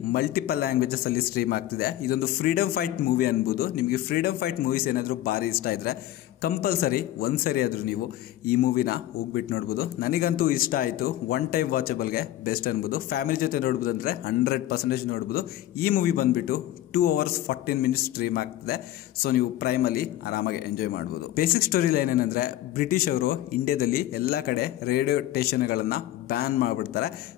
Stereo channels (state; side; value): quieter; right; 13.8 dB